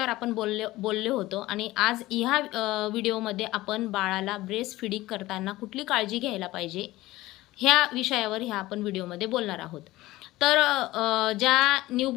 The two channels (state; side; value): quieter; right; 17.8 dB